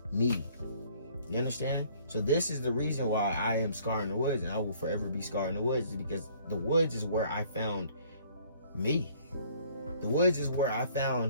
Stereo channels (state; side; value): inverted; both; correlation -0.58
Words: me. You understand? So this is the reason why I am Scar in the Woods, and I will forever be Scar in the Woods, is because the woods is where I found me. The woods is where I